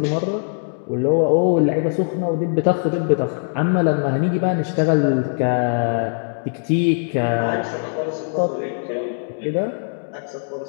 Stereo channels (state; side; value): silent; right; digital silence